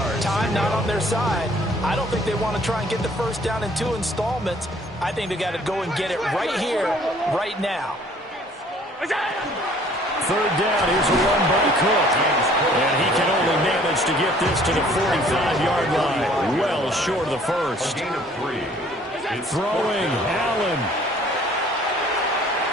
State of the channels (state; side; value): normal; both; correlation 0.56